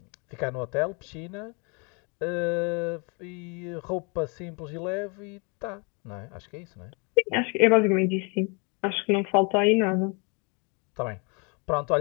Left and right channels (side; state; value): right; quieter; 33.2 dB